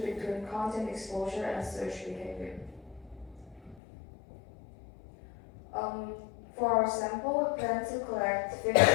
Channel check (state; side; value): drops out; right; at 3.8 s